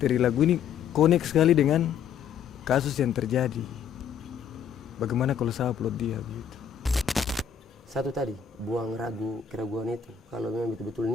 lagu ini connect sekali dengan kasus yang terjadi. Bagaimana kalau saya upload dia begitu? satu tadi, buang keraguan itu. Kalau memang betul-betul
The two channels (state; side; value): quieter; right; 7.9 dB